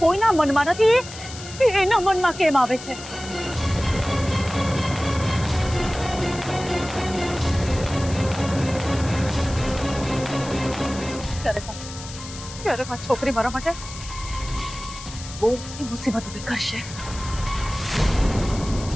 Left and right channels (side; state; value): left; noise; hiss, 13 dB below the sound